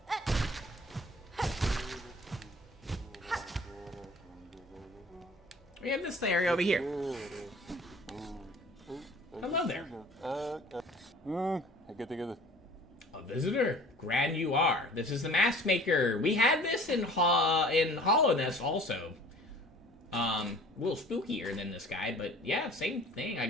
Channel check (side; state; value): both; normal; correlation 0.48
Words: We have this area over here. Hello there. A visitor? Grand you are. This is the mask maker. We had this in Hollowness also. A little spookier than this guy, but yeah, same thing, I